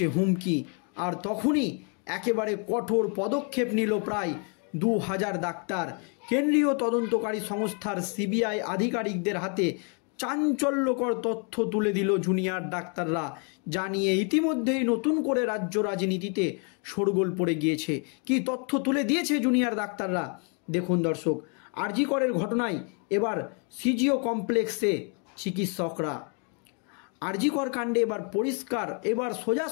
হুমকি। আর তখনই একেবারে কঠোর পদক্ষেপ নিল প্রায় 2000 ডাক্তার। কেন্দ্রীয় তদন্তকারী সংস্থার সিবিআই আধিকারিকদের হাতে চাঞ্চল্যকর তথ্য তুলে দিল জুনিয়র ডাক্তাররা, জানিয়ে ইতিমধ্যেই নতুন করে রাজ্য রাজনীতিতে শোরগোল পড়ে গিয়েছে। কি তথ্য তুলে দিয়েছে জুনিয়র ডাক্তাররা দেখুন দর্শক। আর.জি. করের ঘটনায় এবার সিজিও কমপ্লেক্সে চিকিৎসকরা, আর.জি. কর কাণ্ডে এবার পরিষ্কার, এবার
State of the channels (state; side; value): quieter; right; 38.5 dB